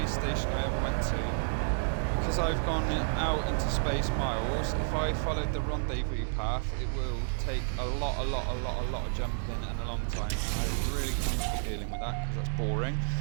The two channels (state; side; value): silent; left; 57 dB below the other